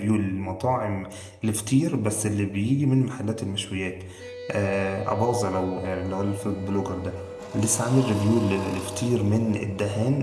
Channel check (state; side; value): identical; both; correlation 1.00